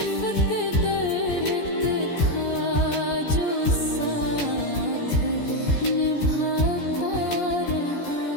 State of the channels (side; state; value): right; late; 14 ms